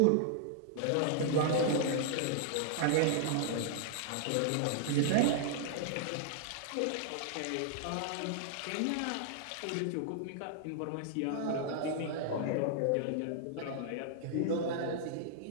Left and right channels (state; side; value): different; both; correlation -0.01